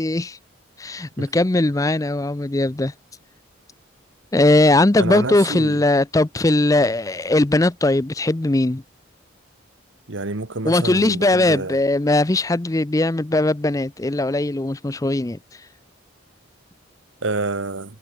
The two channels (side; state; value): both; normal; correlation 0.69